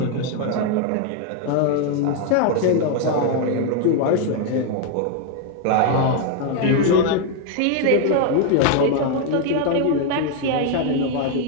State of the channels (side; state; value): both; different; correlation 0.00